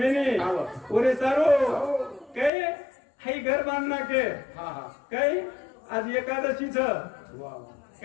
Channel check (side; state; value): right; drops out; at 2.5 s